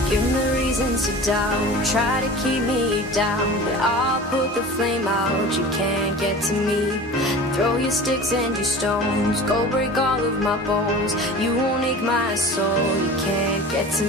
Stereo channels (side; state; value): both; normal; correlation 0.37